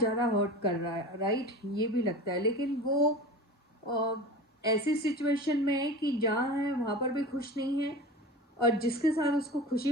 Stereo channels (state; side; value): normal; both; correlation 0.33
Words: हर्ट कर रहा है, राइट, ये भी लगता है। लेकिन वो अ, ऐसी सिचुएशन में है कि जहाँ है वहाँ पर भी खुश नहीं है, और जिसके साथ उसको